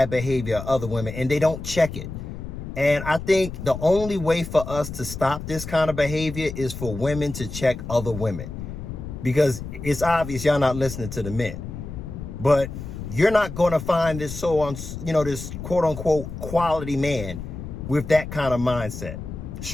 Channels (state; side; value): noise; left; rumble, 9 dB below the sound